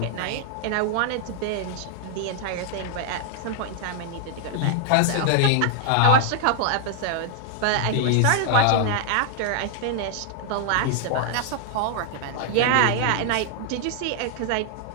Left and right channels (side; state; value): both; different; correlation 0.00